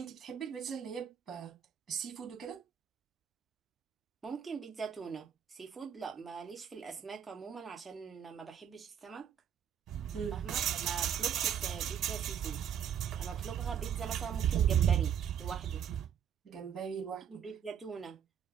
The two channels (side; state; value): left; quieter; 8.5 dB